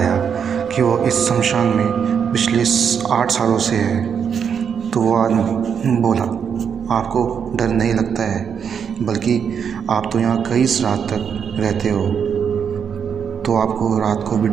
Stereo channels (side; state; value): left; quieter; 7.3 dB